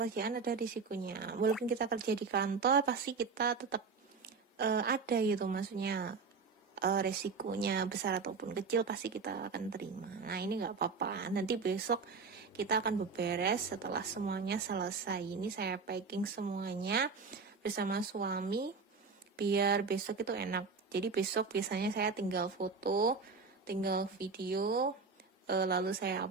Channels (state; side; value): quieter; left; 4.8 dB